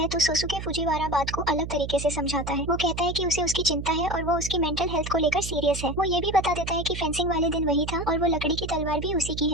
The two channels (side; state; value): right; noise; hum, 7 dB below the sound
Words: तो सोसुके फुजीवारा बात को अलग तरीके से समझाता है। वो कहता है कि उसे उसकी चिंता है और वो उसकी मेंटल हेल्थ को लेकर सीरियस है। वो ये भी बता देता है कि फेंसिंग वाले दिन वही था और वो लकड़ी की तलवार भी उसी की